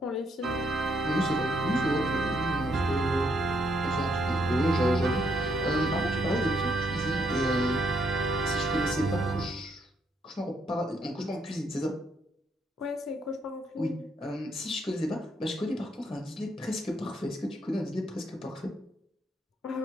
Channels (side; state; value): both; normal; correlation 0.74